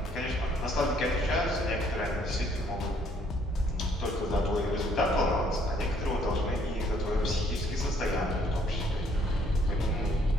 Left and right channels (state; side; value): normal; both; correlation 0.65